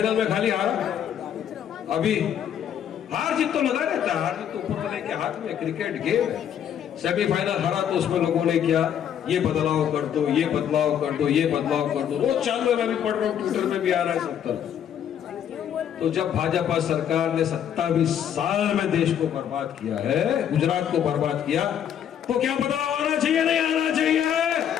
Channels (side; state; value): right; quieter; 9.3 dB